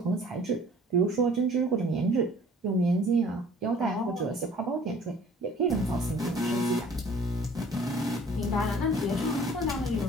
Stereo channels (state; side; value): normal; both; correlation 0.52